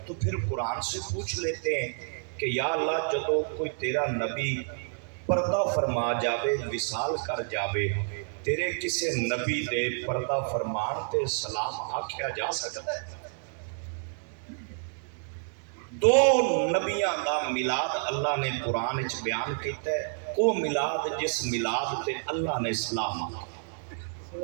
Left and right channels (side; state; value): left; silent; digital silence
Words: تو پھر قرآن سے پوچھ لیتے ہیں کہ یا اللہ جدو کوئی تیرا نبی پردہ فرما جاوے وصال کر جاوے تیرے کسے نبی دے پردہ فرمان تے سلام آکھیا جا سکتا ہے؟ دو نبیاں دا میلاد اللہ نے قرآن وچ بیان کیتا ہے، وہ میلاد جس میلاد تے اللہ نے سلام